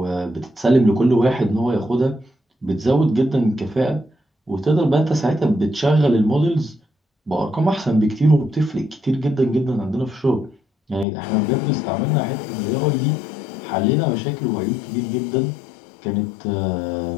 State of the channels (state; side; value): drops out; right; at 11.1 s